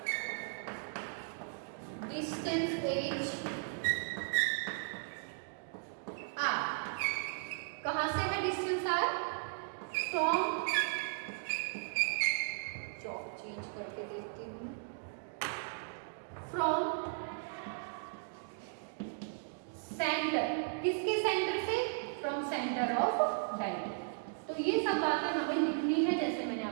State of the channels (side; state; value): left; silent; digital silence